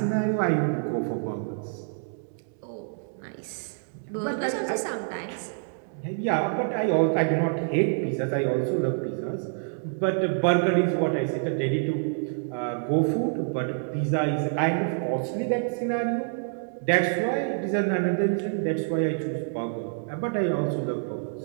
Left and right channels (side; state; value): left; silent; digital silence